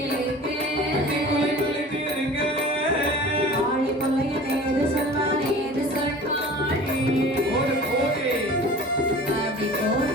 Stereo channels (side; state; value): both; normal; correlation 0.41